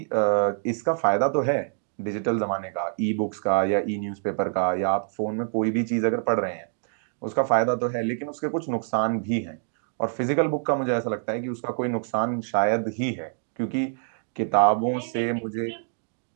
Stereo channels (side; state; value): left; silent; 59 dB below the other